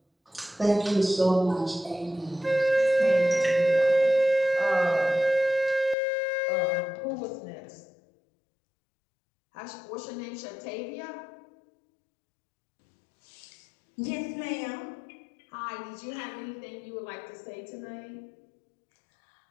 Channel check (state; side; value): drops out; right; at 6.0 s